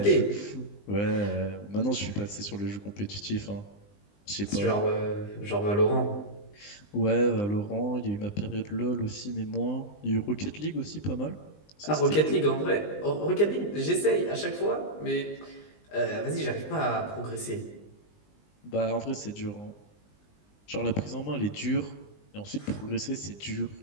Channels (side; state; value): right; late; 20 ms